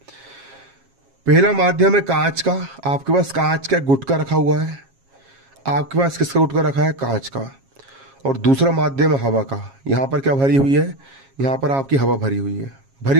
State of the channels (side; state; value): left; late; 7.4 ms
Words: पहला माध्यम है कांच का, आपके पास कांच का गुटका रखा हुआ है। आपके पास किसका गुटका रखा है? कांच का। और दूसरा माध्यम है हवा का। यहां पर क्या भरी हुई है? यहां पर आपकी हवा भरी हुई है, भरी